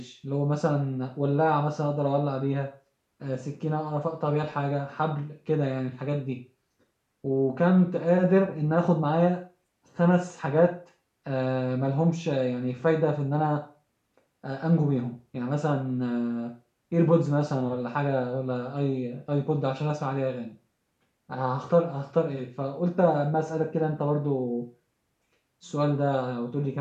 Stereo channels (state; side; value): identical; both; correlation 1.00